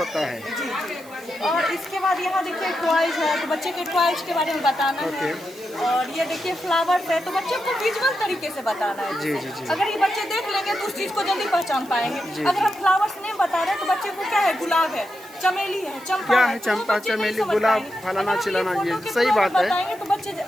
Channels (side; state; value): right; noise; hiss, 22 dB below the sound